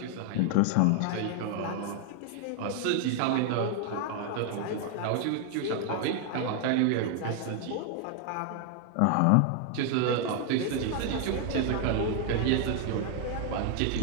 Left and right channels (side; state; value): both; different; correlation 0.00